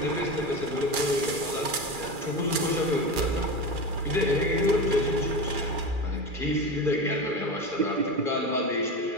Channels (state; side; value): late; left; 2.4 ms